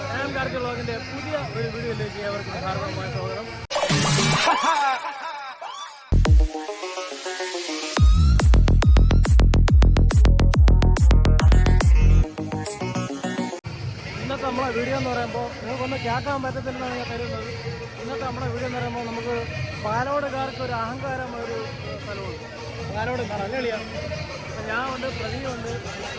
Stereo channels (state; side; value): identical; both; correlation 1.00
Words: ഞാൻ കാർത്തി വ്ളോഗിന്റെ പുതിയ ഒരു വീഡിയോയിലേക്ക് ഏവർക്കും ഹാർദവമായ സ്വാഗതം. ഇന്നത്തെ നമ്മളെ വീഡിയോ എന്ന് പറയുമ്പോൾ നിങ്ങൾക്കൊന്നും കേൾക്കാൻ പറ്റത്തില്ലെന്നാണ് ഞാൻ കരുതുന്നത്. ഇന്നത്തെ നമ്മുടെ വീഡിയോ എന്ന് പറയുമ്പോൾ നമുക്ക് പാലോടുകാർക്ക് ഒരു അഹങ്കാരം ഒരു സ്ഥലമുണ്ട്. പാലോട് കളിയാണ്. ഞാൻ ഉണ്ട്, പ്രതിയുണ്ട്,